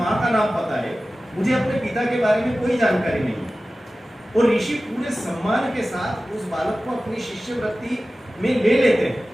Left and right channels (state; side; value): normal; both; correlation 0.96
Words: का नाम पता है, मुझे अपने पिता के बारे में कोई जानकारी नहीं। और ऋषि पूरे सम्मान के साथ उस बालक को अपनी शिष्यवृत्ति में ले लेते हैं,